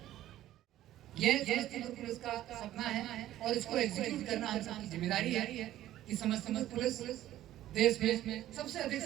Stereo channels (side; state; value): left; quieter; 13.5 dB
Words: ये समस्तीपुर पुलिस का सपना है और इसको एग्जीक्यूट करना हम सबकी जिम्मेदारी है कि समस्तीपुर पुलिस देश में सबसे अधिक